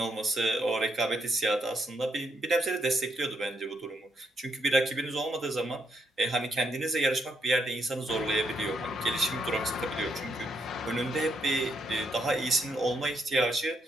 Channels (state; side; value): normal; both; correlation 0.76